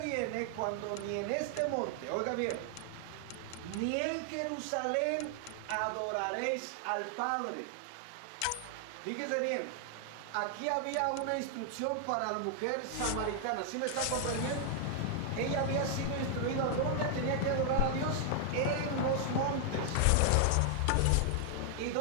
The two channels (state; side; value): different; both; correlation 0.00